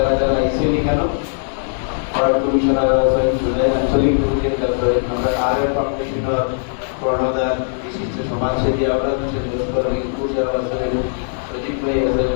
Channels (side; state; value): right; silent; digital silence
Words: যারা আইসেন এখানে, ওয়ার্ড কমিশনার আছেন, জুলাই আঞ্চলিক প্রেসিডেন্ট আছেন, আমরা আর ফাউন্ডেশনের কর্ণধার বিশিষ্ট সমাজসেবী আমরা লস্কর রিঙ্কু যারা আছেন, সজিব ভাই আছেন,